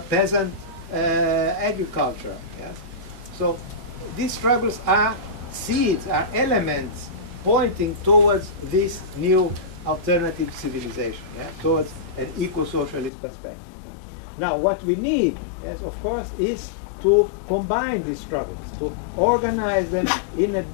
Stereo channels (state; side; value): drops out; right; at 13.1 s